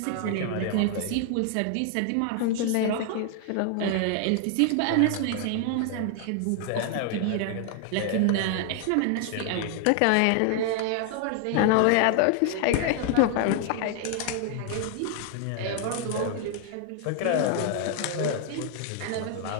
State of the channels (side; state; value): both; different; correlation 0.00